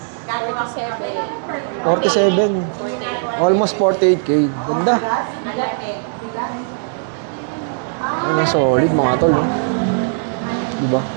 47. Almost 48k. Ganda. Solid mga tol. Diba?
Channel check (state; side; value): silent; left; 67 dB below the other